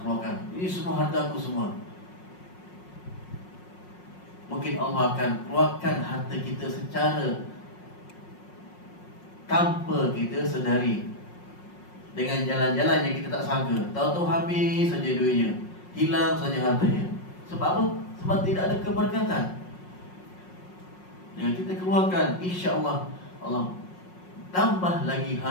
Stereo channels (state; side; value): late; right; 5.5 ms